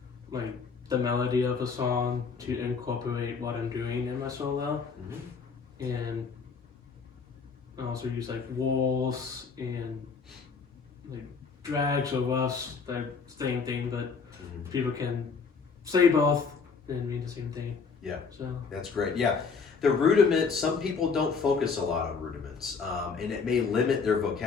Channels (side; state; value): right; quieter; 5.3 dB